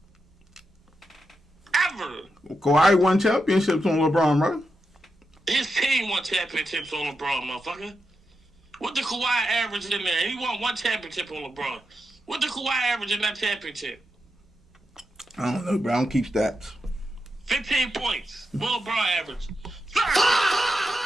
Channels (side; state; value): both; normal; correlation 0.87